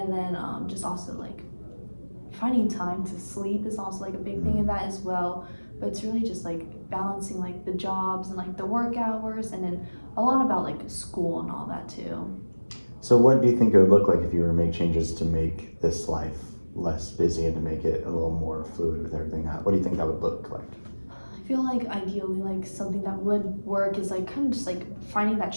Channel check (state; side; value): inverted; both; correlation -1.00